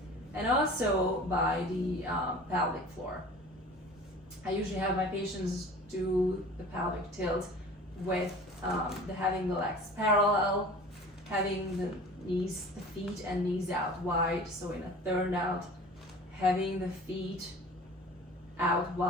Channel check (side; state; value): both; normal; correlation 0.42